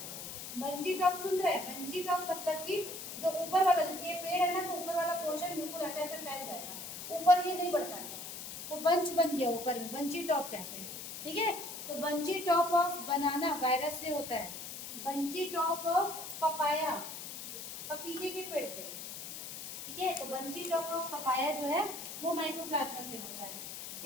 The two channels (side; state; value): left; noise; hiss, 8 dB below the sound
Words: बंची टॉप सुन रहे हैं, बंची टॉप मतलब कि जो ऊपर वाला, जैसे ये पेड़ है ना, तो ऊपर वाला पोर्शन बिल्कुल ऐसे ऐसे फैल जाएगा, ऊपर ये नहीं बढ़ता है, तो बंच बन गया ऊपर में, बंची टॉप कहते हैं, ठीक है। तो bunchy top of banana virus से होता है, बंची टॉप ऑफ पपाया पपीते के पेड़ पे, ठीक है। तो बंची टॉप ऑफ पपाया जो है वो माइकोप्लाज्मा से होता है।